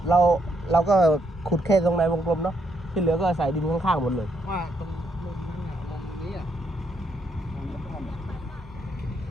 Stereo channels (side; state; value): both; normal; correlation 0.76